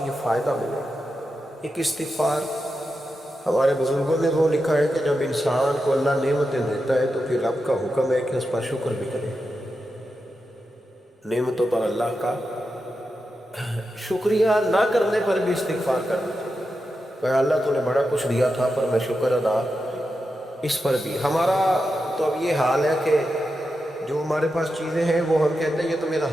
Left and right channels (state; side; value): normal; both; correlation 0.89